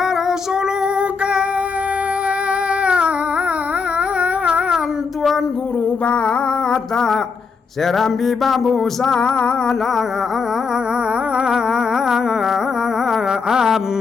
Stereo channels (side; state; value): right; quieter; 5.2 dB